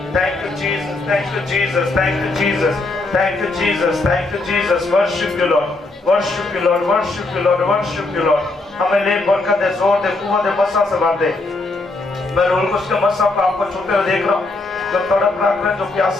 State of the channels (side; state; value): right; quieter; 3.2 dB